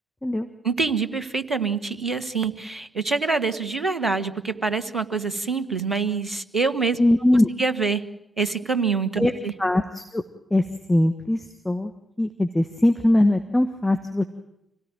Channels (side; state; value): both; normal; correlation 0.80